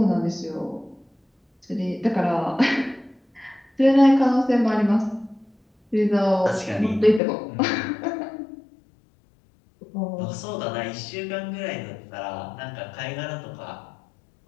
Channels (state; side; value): drops out; right; at 7.2 s